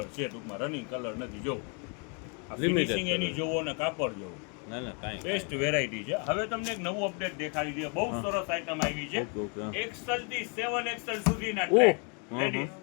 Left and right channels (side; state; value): right; quieter; 36.8 dB